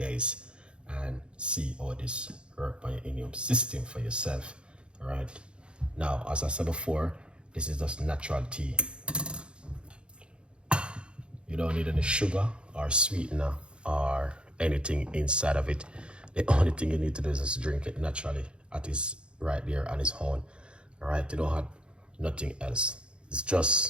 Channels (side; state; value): left; late; 0.055 ms